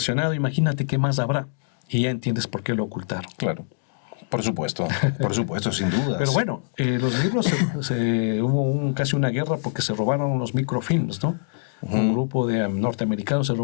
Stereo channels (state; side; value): silent; right; digital silence